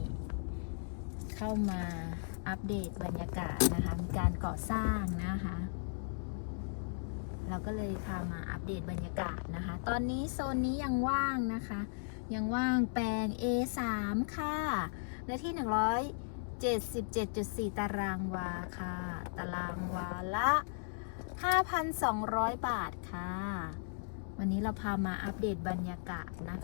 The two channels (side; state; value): right; silent; digital silence